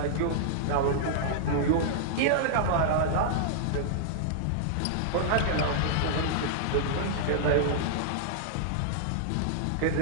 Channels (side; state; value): both; different; correlation -0.01